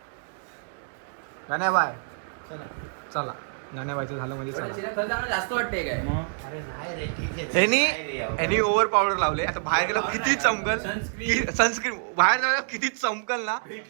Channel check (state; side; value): silent; left; digital silence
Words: गाण्या बाय चला. गाण्या बायचं झालं म्हणजे चला. जास्त वाटते काय? यांनी ओव्हर पावडर लावले. आता बाहेर गेलो किती चमकल. सनस्क्रीन बाहेर जाऊ किती चमकल ना.